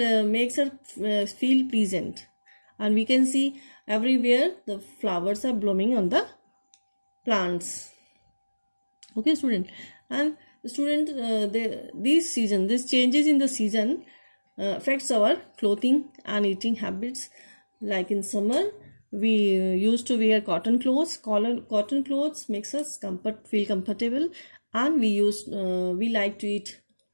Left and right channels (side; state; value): both; inverted; correlation -1.00